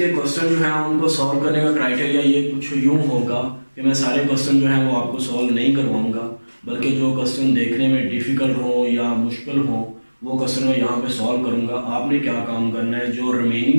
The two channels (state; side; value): inverted; both; correlation -1.00